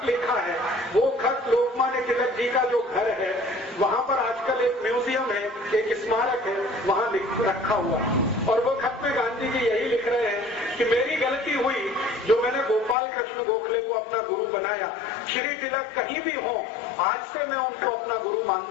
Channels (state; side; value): drops out; right; at 13.0 s